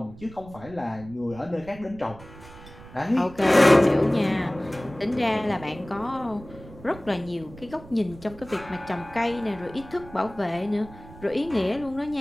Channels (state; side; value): noise; right; rumble, 18 dB below the sound